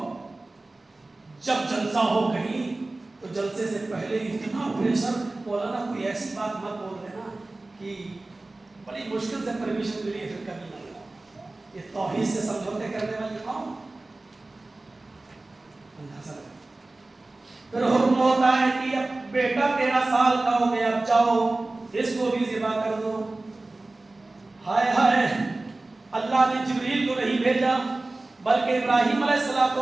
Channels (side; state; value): left; quieter; 3.0 dB